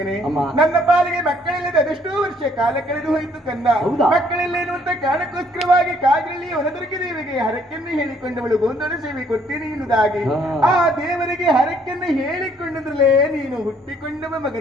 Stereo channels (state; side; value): normal; both; correlation 0.64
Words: ನನ್ನ ಪಾಲಿಗೆ ಮಕ್ಕಳಿಲ್ಲದೆ ಅದೆಷ್ಟೋ ವರ್ಷ ಕಾಲ ಕಳೆದು ಹೋಯಿತು ಕಂದ. ಮಕ್ಕಳಿಲ್ಲ ಎನ್ನುವಂತ ಕಾರಣಕ್ಕೋಸ್ಕರವಾಗಿ ಕಾಜಳ್ಳಿ ವನದುರ್ಗಿ ದೇವಿಗೆ ಹರಕೆಯನ್ನು ಹೇಳಿಕೊಂಡವಳು ಗೋಂದಳ ಸೇವೆ ಕೊಡ್ತೀನಿ ಎನ್ನುವುದಾಗಿ ಆ ದೇವರಿಗೆ ಹರಕೆಯನ್ನು ಹೇಳಿಕೊಂಡದ್ರಲ್ಲೇ ನೀನು ಹುಟ್ಟಿಕೊಂಡವ